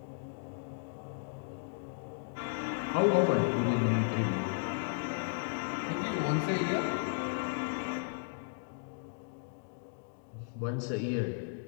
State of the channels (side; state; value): right; silent; digital silence